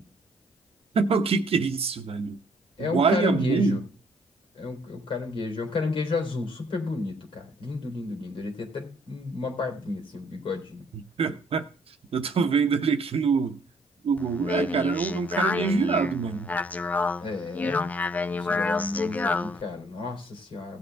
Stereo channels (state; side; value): normal; both; correlation 0.63